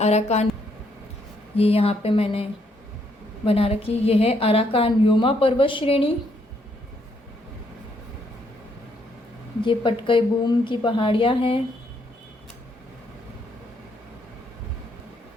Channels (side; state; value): both; normal; correlation 0.73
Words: ये यहाँ पे मैंने बना रखी, ये है अराकान योमा पर्वत श्रेणी। ये पटकई बूम की पहाड़ियाँ हैं।